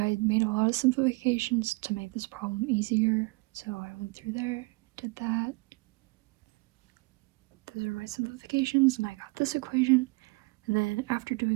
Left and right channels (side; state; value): left; quieter; 26.9 dB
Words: made a lot of simplifications to make this problem easier, so I went through there, did that. Those are my simplifications, and I got this equation, and then after